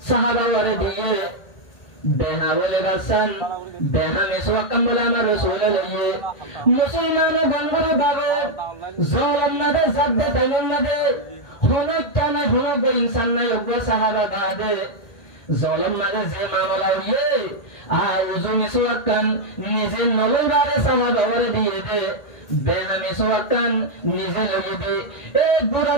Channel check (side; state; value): right; late; 1.8 ms